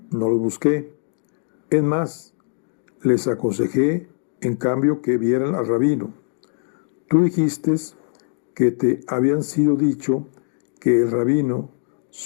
no los busqué. Es más, les aconsejé, en cambio, que vieran al rabino. Tú dijiste que te habían sido dicho que el rabino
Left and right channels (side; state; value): right; silent; digital silence